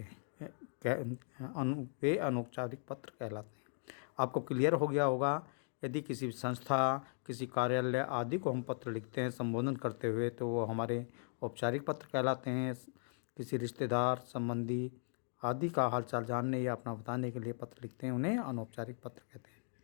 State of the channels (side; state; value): right; silent; digital silence